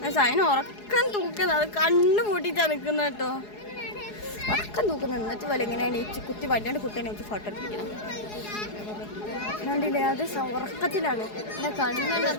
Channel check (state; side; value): late; right; 4.8 ms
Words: അതിന് ഉറക്കം തൂക്കുന്നത്, അത് കണ്ണു പൂട്ടിയിട്ടാണ് നിൽക്കുന്നത് കേട്ടോ. ഉറക്കം തൂക്കുന്നത്. എന്നിട്ട് പോലെ എങ്ങനെയാണ് ഈ കുത്തി വല്ലാണ്ട് കുട്ടീനെ വെച്ച് ഫോട്ടോ എടുപ്പിക്കണം. കണ്ടില്ലേ, അത് ഉറക്കത്തിലാണ്. എന്നെ കണ്ണെല്ലാം